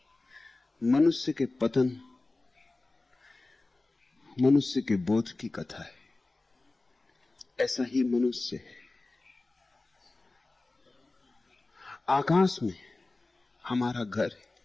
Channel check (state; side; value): quieter; right; 3.2 dB